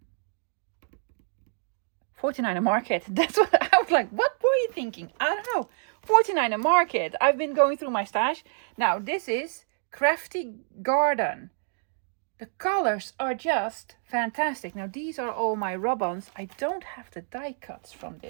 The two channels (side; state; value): left; silent; digital silence